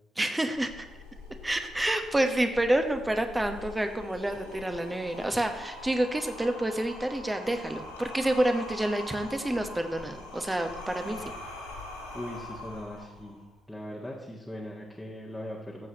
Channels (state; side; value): normal; both; correlation 0.92